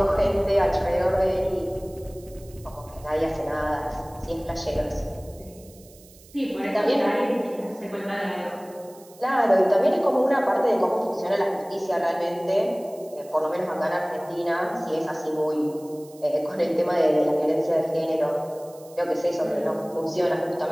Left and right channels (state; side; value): noise; right; hiss, 24 dB below the sound